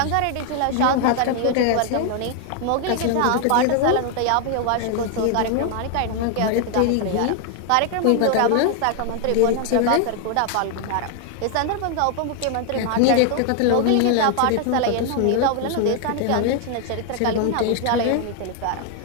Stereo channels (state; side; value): different; both; correlation 0.00